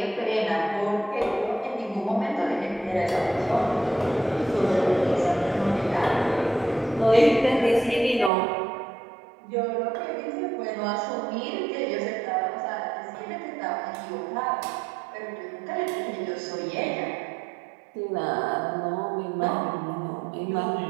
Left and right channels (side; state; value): left; drops out; at 8.3 s